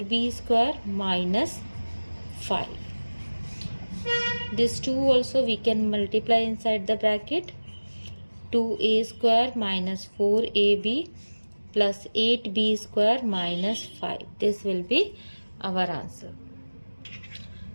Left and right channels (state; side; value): inverted; both; correlation -1.00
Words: square minus 5. This 2 also we can multiply inside the bracket, 2a square minus 4ab plus 8b square minus 5. This will be our answer.